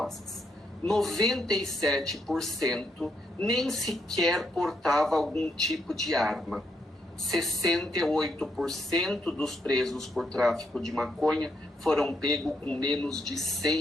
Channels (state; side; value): normal; both; correlation 0.77